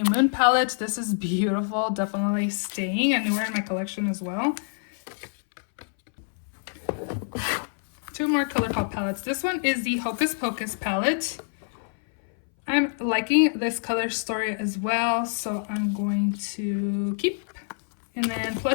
Moon palette. This is beautiful, definitely staying and newer in my collection as well. Two more ColourPop palettes. This one is the Hocus Pocus palette. I'm liking this color story as well, so I'm going to keep. And then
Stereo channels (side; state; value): right; silent; 61 dB below the other